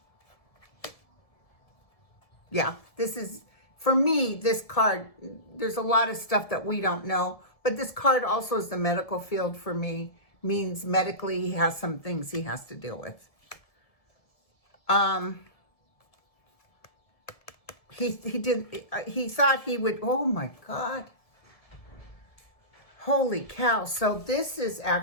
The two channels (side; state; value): right; late; 1.7 ms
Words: Yeah, for me, this card, there's a lot of stuff that we don't know, but this card also is the medical field for me, means medically he has some things he has to deal with. He thought he would, oh my God. Holy cow. So this is